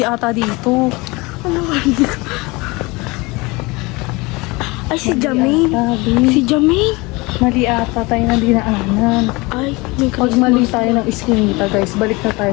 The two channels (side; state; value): right; quieter; 24.4 dB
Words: ata dito. Ay, si Jamin. Sabi. Si Jamin. Mali ata tayo na dinaanan. Ay, may Pag mali tayo ng iskinita, guys, balik na